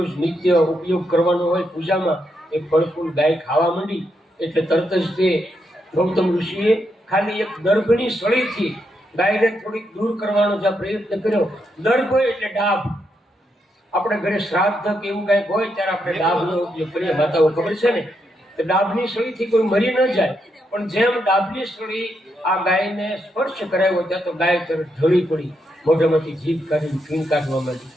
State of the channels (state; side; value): normal; both; correlation 0.81